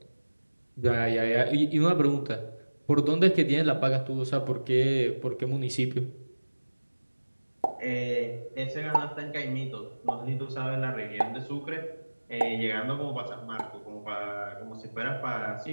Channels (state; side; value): inverted; both; correlation -1.00